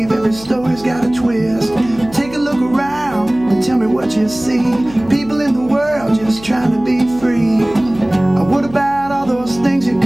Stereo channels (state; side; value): noise; left; hum, 19 dB below the sound